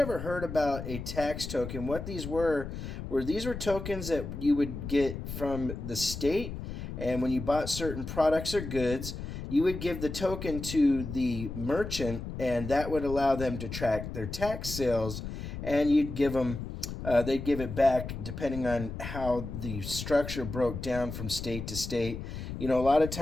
heard about a tax token, what these were these were tokens that you would get from the state. And when you bought certain products or goods, you would give the token to the merchant, and that would allow them to track their tax sales. And you'd give them they'd give it back depending on how the structure broke down from state to state. You know, a lot of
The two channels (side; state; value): left; noise; rumble, 7 dB below the sound